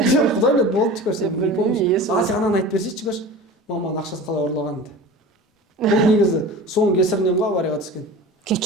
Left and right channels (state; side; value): normal; both; correlation 0.36